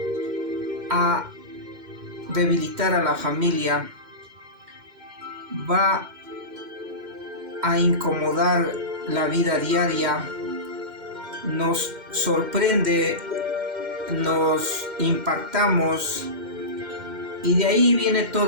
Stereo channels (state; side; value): late; left; 2.1 ms